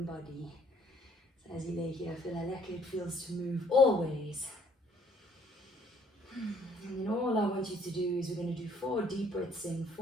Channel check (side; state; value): both; normal; correlation 0.63